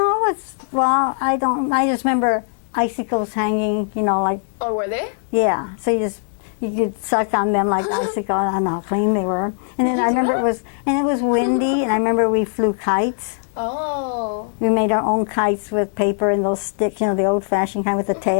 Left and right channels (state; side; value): silent; right; 66 dB below the other